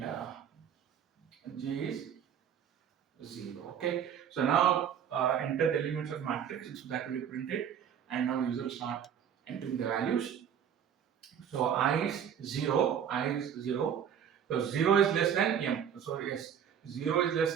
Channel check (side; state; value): left; quieter; 8.6 dB